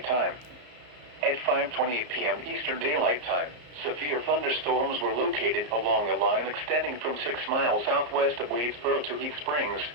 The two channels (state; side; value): late; left; 34 ms